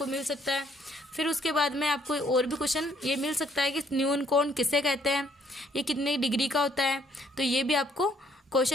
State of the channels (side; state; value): both; normal; correlation 0.66